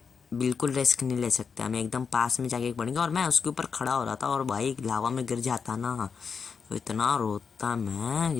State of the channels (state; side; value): quieter; right; 5.9 dB